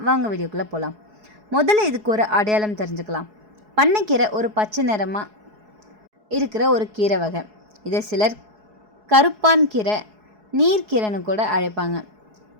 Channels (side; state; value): left; late; 4.7 ms